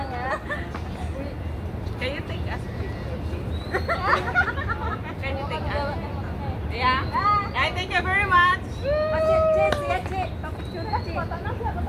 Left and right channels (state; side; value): identical; both; correlation 1.00